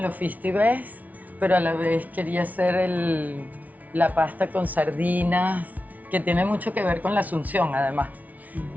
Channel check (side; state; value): left; late; 0.074 ms